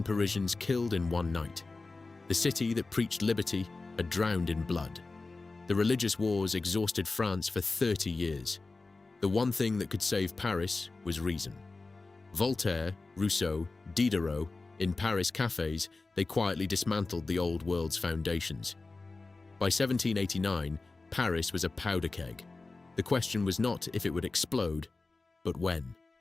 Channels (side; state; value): right; quieter; 3.6 dB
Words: Parisians killed in one night. The city that preached liberty had drowned in blood. The religious wars exhausted France for 30 years. The one thing that could save Paris was reason. Voltaire, Rousseau, Diderot, in Paris cafes, they quietly dismantled the old world's foundations. By 1789, Paris was a powder keg. The question was not if it would explode, but when.